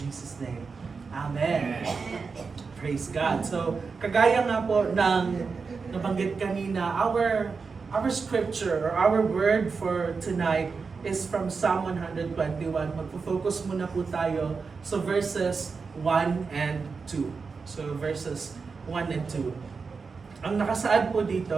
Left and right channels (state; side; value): quieter; left; 4.9 dB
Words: name. Amen. Praise God. So, kagaya nga po ng nabanggit kanina, our scripture or our word for tonight is from Psalm 121. Magpo-focus muna po tayo sa verses 1 and 2. So, verses 1 and 2. Ang nakasaad po